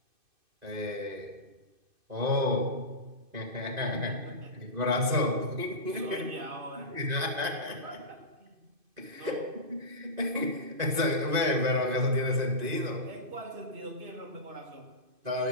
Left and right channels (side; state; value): left; late; 2.5 ms